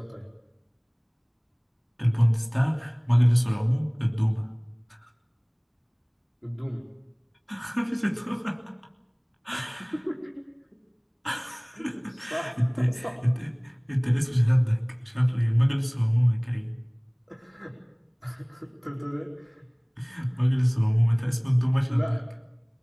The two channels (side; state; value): both; identical; correlation 1.00